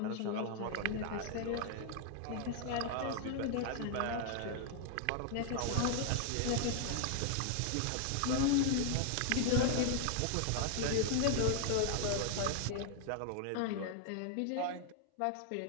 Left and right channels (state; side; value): different; both; correlation 0.00